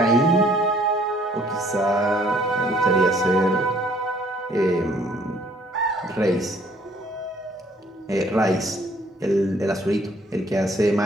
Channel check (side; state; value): both; normal; correlation 0.61